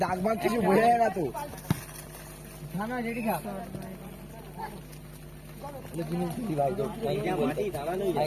দাগ ভাগ কিছু বোঝা যায় না তো খানা রেডি খা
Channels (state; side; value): identical; both; correlation 1.00